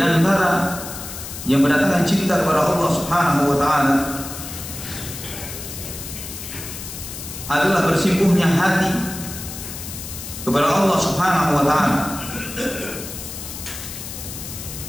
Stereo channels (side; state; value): left; noise; hiss, 10 dB below the sound